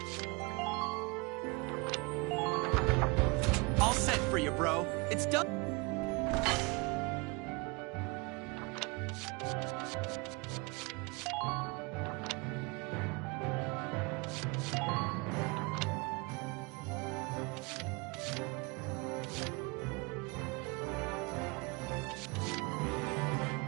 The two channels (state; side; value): quieter; left; 28.1 dB